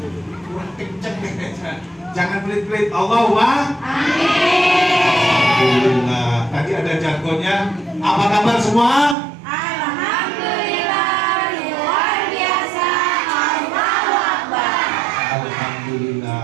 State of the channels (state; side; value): drops out; left; at 9.2 s